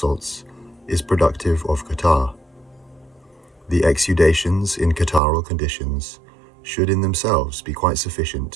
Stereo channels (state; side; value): drops out; left; at 5.2 s